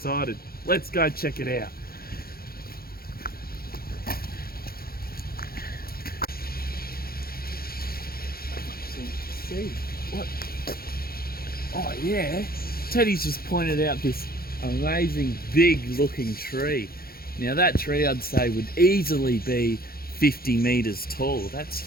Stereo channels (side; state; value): right; late; 0.44 ms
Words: Let's go check it out. See what? Oh yeah, Teddy's just pointed out this amazing big looking tree. Now that tree I'd say would easily be 50 meters tall.